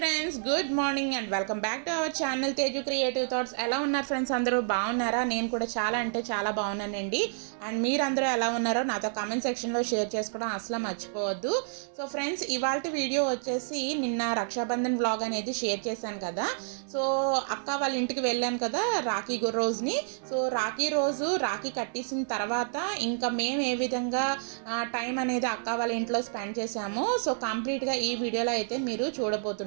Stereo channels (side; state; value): left; silent; digital silence